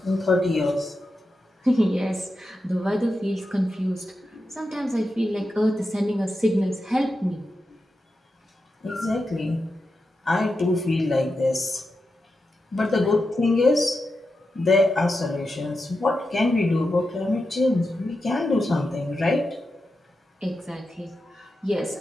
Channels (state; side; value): normal; both; correlation 0.89